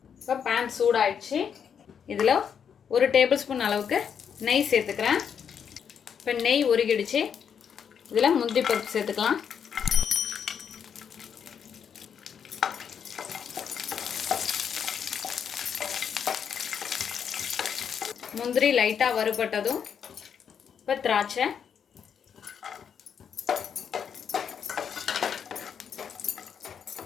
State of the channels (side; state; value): right; quieter; 7.6 dB